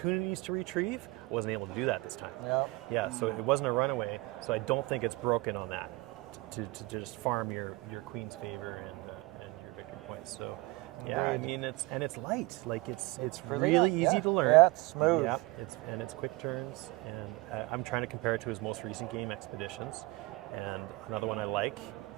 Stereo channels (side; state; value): left; quieter; 23.0 dB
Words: to retrieve, I wasn't able to do that this time. Yeah. Yeah, so it wasn't a runaway, so I don't think it's broken on that to just farm your queen's favor and your victory points. So yeah, I mean it's light, like it's really easy yeah. to learn. Yeah, it's smooth. Yep, it's quick turns, and I'm trying to compare it to his most recent game, Expeditions, and another one I like.